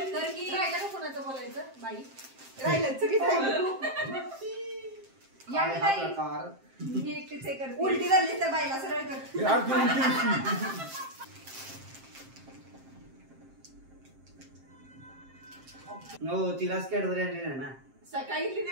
कोणाचं बोलायचं बाई मी एकटीच हे करते उलटी झाली तर बाईला सरळ कर हो तिलाच कॅडबरी आणली ना सकाळी घेतली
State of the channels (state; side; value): late; left; 7.6 ms